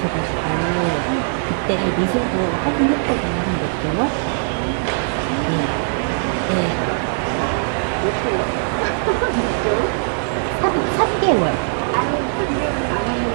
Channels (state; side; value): silent; left; digital silence